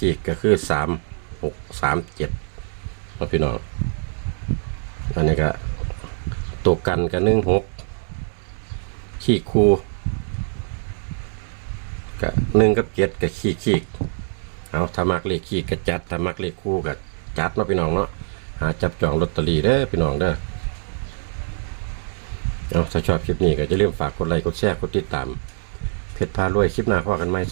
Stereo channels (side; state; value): left; silent; 63 dB below the other